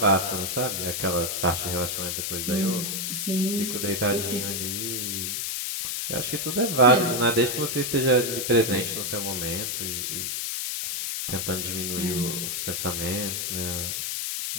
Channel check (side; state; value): left; noise; hiss, 2 dB below the sound